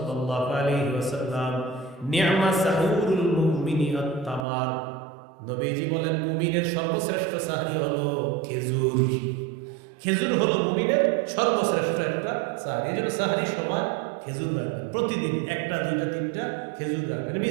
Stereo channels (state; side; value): drops out; left; at 4.5 s